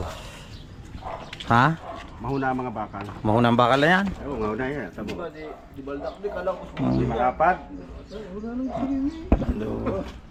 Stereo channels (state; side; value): identical; both; correlation 1.00